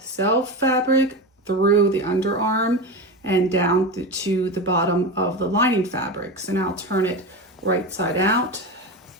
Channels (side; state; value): both; normal; correlation 0.22